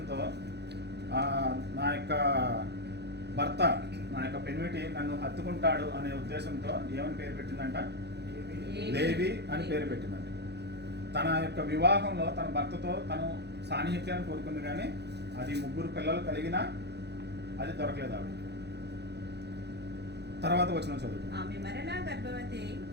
నా యొక్క భర్త, నా యొక్క పెనిమిటి నన్ను హత్తుకుంటాడు అనే ఉద్దేశంతో ఏమని పేరు పెట్టిందంట? లేవి అని పేరు పెట్టిందంట. తన యొక్క వివాహంలో తన భర్తతో తను సాన్నిహిత్యాన్ని కోరుకుంది, కానీ అది ముగ్గురు పిల్లలు కలిగినా అది దొరకలేదు ఆవిడ. తర్వాత వచ్చిన చదువు.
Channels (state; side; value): late; left; 0.49 ms